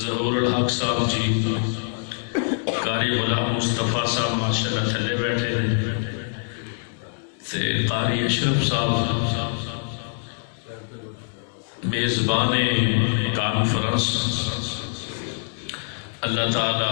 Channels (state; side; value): silent; right; digital silence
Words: ظہور الحق صاحب جی قاری غلام مصطفیٰ صاحب ماشاءاللہ تھلے بیٹھے ہیں تے قاری اشرف صاحب میزبان کانفرنس. اللہ